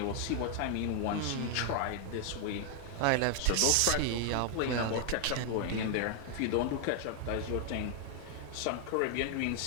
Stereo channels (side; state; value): both; different; correlation 0.00